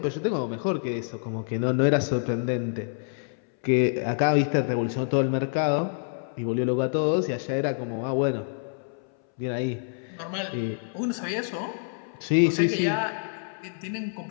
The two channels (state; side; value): silent; right; 60 dB below the other